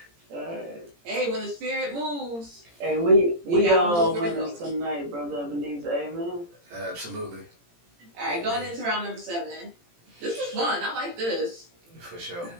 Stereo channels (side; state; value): left; late; 17 ms